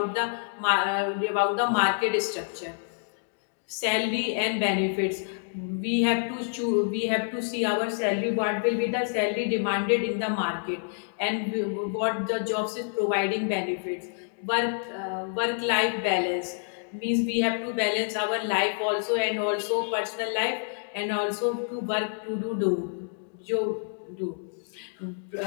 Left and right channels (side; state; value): right; silent; digital silence